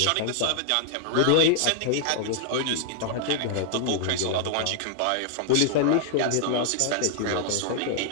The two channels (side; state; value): both; different; correlation -0.01